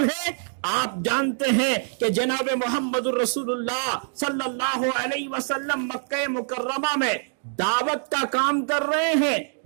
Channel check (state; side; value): silent; left; 62 dB below the other